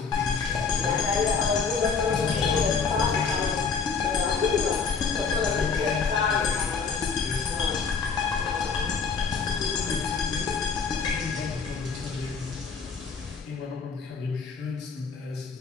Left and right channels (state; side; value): quieter; right; 5.3 dB